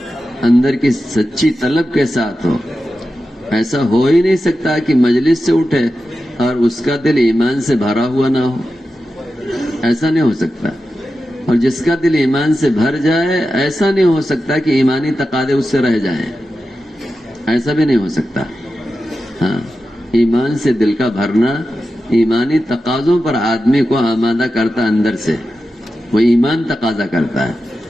اندر کی سچی طلب کے ساتھ ہو. ایسا ہو ہی نہیں سکتا کہ مجلس سے اٹھے اور اس کا دل ایمان سے بھرا ہوا نہ ہو. ایسا نہیں ہو سکتا. اور جس کا دل ایمان سے بھر جائے ایسا نہیں ہو سکتا کہ ایمانی تقاضے اس سے رہ جائیں. ایسا بھی نہیں ہو سکتا. ہاں، ایمان سے دل کا بھرنا ایمانی تقاضوں پر آدمی کو آمادہ کرتا اندر سے. وہ ایمان تقاضا کرتا ہے.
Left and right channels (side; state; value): both; normal; correlation 0.91